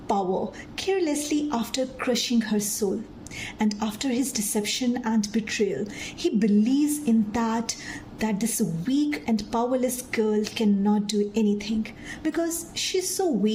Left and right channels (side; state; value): both; identical; correlation 1.00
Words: power carelessly after crushing her soul. And after his deception and betrayal, he believes in that this weak and powerless girl cannot do anything because she's so